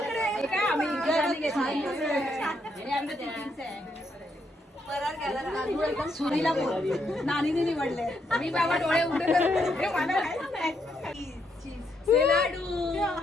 आम्ही सुरीला बोल नानीने निवडले मी बाबा डोळे उघडे करून लाडू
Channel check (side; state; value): both; normal; correlation 0.77